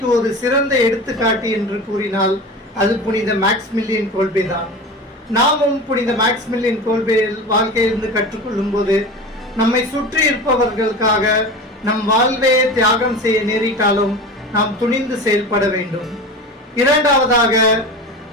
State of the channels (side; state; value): both; normal; correlation 0.31